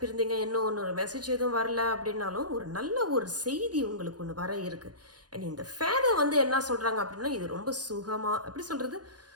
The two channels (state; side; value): late; left; 0.69 ms